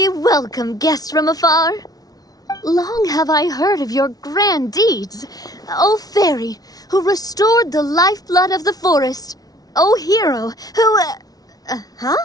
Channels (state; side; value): late; right; 0.18 ms